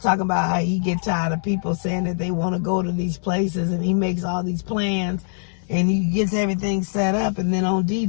about how he get tired of people saying that they want to go to these places, and he makes all these plans and he gets everything set up, and then on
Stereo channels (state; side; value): silent; right; digital silence